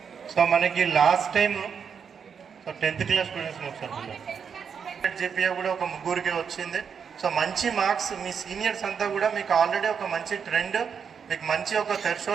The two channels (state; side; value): quieter; left; 6.8 dB